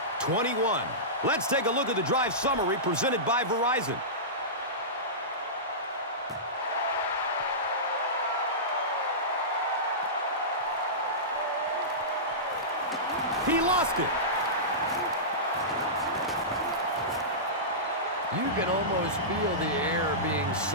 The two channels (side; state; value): both; normal; correlation -0.18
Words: 21. Let's take a look at the drive summary presented by Verizon. He lost it. You can almost feel the air being